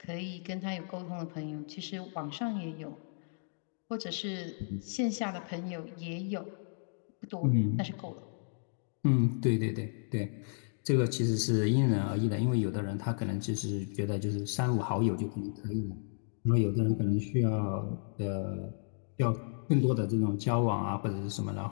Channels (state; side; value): silent; right; digital silence